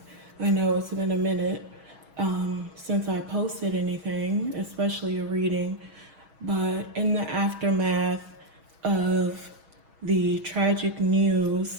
I know it's been a minute since I posted anything, especially a reading, but in the aftermath of the tragic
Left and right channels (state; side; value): late; left; 6.2 ms